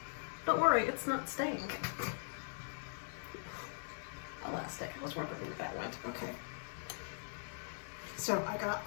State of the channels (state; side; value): silent; right; 51 dB below the other